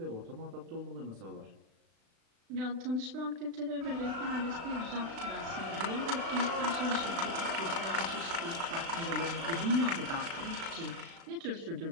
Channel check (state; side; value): late; left; 36 ms